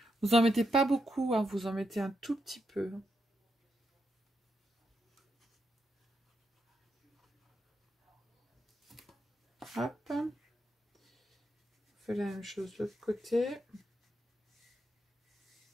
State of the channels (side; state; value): both; normal; correlation 0.83